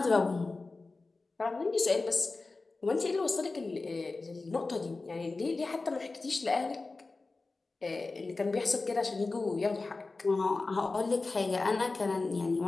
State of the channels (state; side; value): quieter; right; 3.6 dB